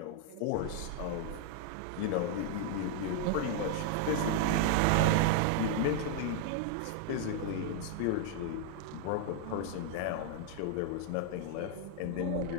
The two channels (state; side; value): different; both; correlation 0.00